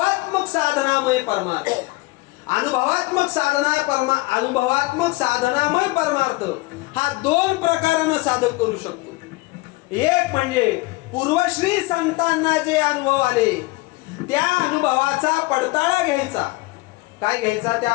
साधनामय परमार्थ. अनुभवात्मक साधनामय परमार्थ हा दोन प्रकारानं साधक करू शकतो. एक म्हणजे पूर्वश्री संतांना जे अनुभव आले त्या अनुभवाचा पडताळा घ्यायचा. काय घ्यायचा? त्या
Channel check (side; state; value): right; quieter; 22.3 dB